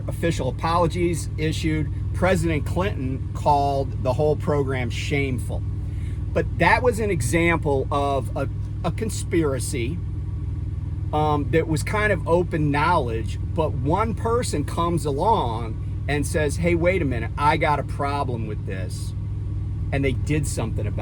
official apologies issued. President Clinton called the whole program shameful. But that was an example of a conspiracy that was kind of open knowledge. But one person comes along and says, hey, wait a minute, I got a problem with this. And they did something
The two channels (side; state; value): both; identical; correlation 1.00